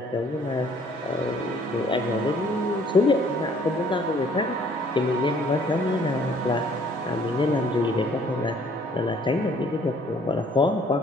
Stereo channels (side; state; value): both; normal; correlation 0.60